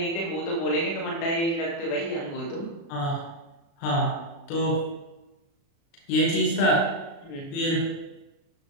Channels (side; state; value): right; late; 36 ms